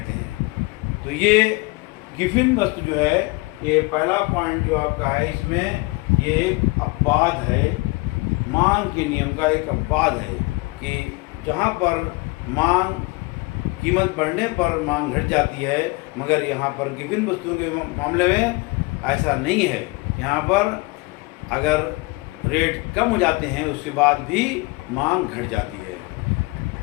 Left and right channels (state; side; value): quieter; right; 25.3 dB